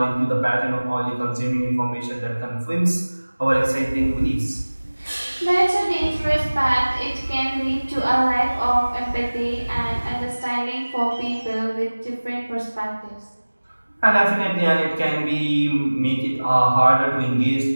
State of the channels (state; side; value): inverted; both; correlation -1.00